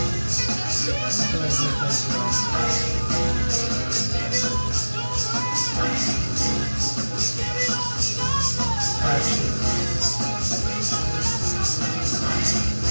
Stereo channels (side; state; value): both; inverted; correlation -1.00